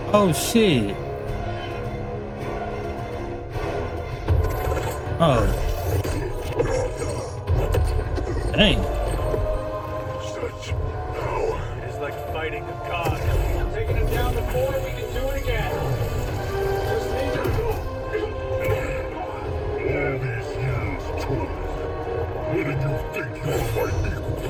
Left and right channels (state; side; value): identical; both; correlation 1.00